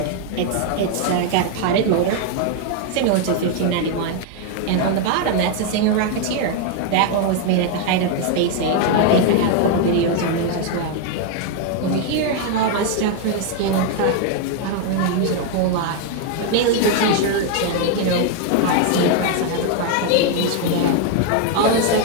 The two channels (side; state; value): both; different; correlation 0.01